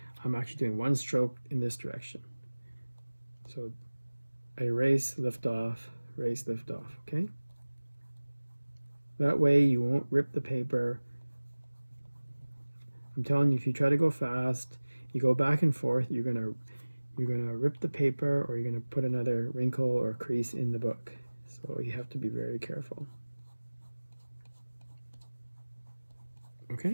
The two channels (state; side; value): inverted; both; correlation -1.00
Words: I'm actually doing one stroke in this direction. So erase, lift off, erase, lift off, okay? That way you won't rip the paper. I'm telling you, if you try to go fast, you go back and forth, you're gonna rip the paper, or you're gonna put another wrinkle or crease in the book. So you have to be very careful.